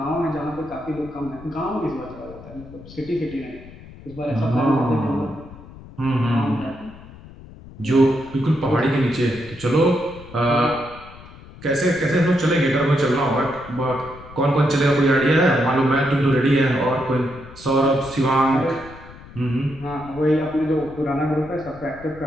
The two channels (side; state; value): left; noise; rumble, 18 dB below the sound